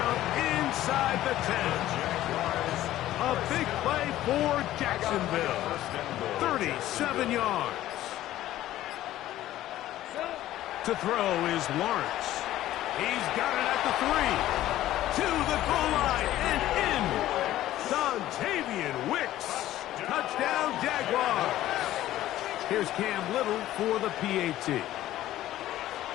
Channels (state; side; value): quieter; right; 14.1 dB